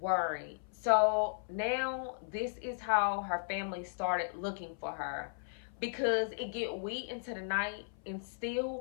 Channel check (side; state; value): right; silent; 54 dB below the other